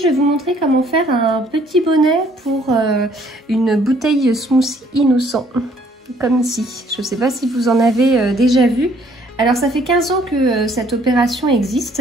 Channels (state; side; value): normal; both; correlation 0.62